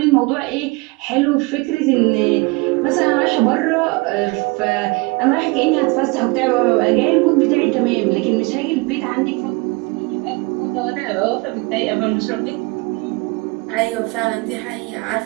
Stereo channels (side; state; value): left; quieter; 26.0 dB